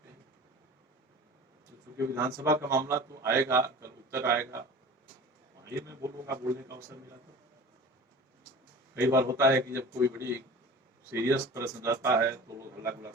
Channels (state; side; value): normal; both; correlation 0.39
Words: क्योंकि विधानसभा का मामला तो आएगा, कल उत्तर आएगा, वही मैं बोलूंगा, बोलने का अवसर मिला तो। कई बार होता है कि जब कोई बड़ी सीरियस प्रश्न रहता है तो लोग हल्ला गुल्ला